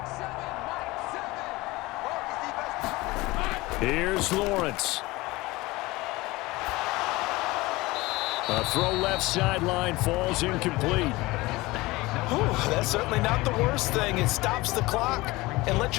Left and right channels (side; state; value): right; quieter; 20.9 dB